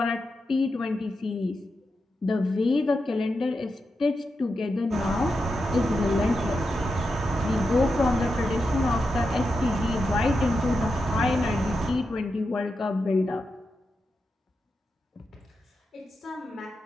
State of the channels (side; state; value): both; normal; correlation 0.88